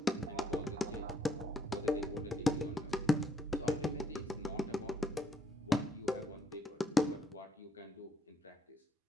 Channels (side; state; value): both; normal; correlation 0.72